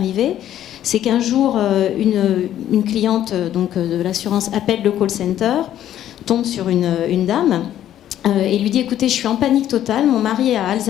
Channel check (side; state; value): right; quieter; 11.6 dB